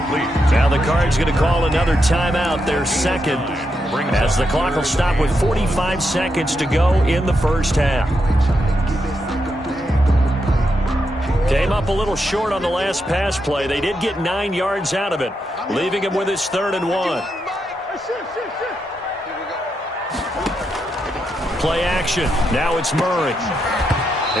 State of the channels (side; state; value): both; normal; correlation 0.83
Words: Now the Cards going to call another timeout, their second, as the clock will stop with 45 seconds to go in the first half. Came up a little short on the last pass play. They did get 9 yards out of it, leaving him with his 3rd and 1. Play action. Now it's Murray.